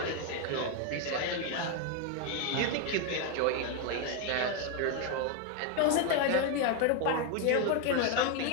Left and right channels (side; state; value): both; different; correlation 0.01